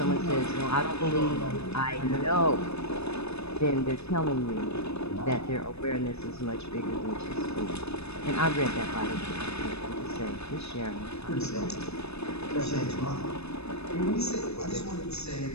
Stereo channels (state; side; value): late; right; 0.79 ms